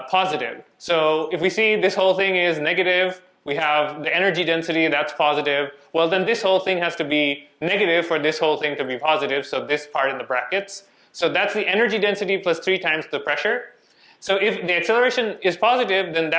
So if we see this whole thing is negative, we have the energy density, that's positive. Well, then this whole thing has to be negative for this whole thing to be positive, so this part in the brackets. So that's the energy density plus 3 times the pressure. So if the acceleration is positive, then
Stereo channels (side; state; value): both; identical; correlation 1.00